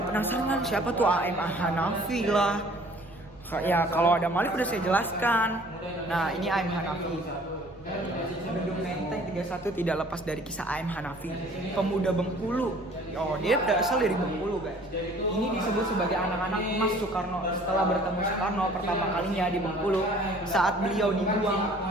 penasaran siapa tuh AM Hanafi lah. Ya kalau ada Malik udah saya jelaskan. Nah ini AM Hanafi. Gedung Menteng 31 tidak lepas dari kisah AM Hanafi, pemuda Bengkulu. Oh dia berasal dari Bengkulu guys. Ini disebut sebagai anak-anak emas Soekarno setelah bertemu Soekarno pertama kalinya di Bengkulu saat beliau dibuang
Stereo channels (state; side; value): normal; both; correlation 0.53